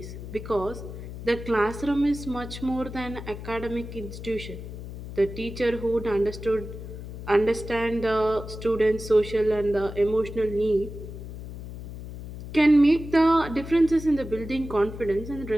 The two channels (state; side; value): noise; left; hum, 10 dB below the sound